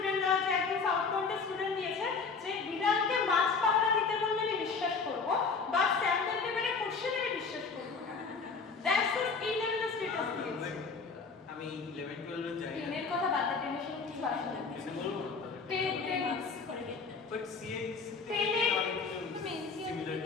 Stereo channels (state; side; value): quieter; right; 4.8 dB